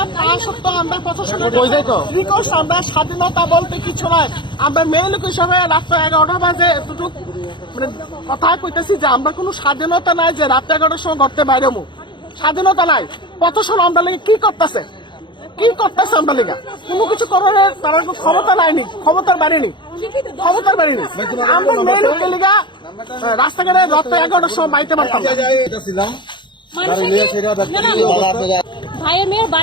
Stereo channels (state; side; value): late; right; 0.23 ms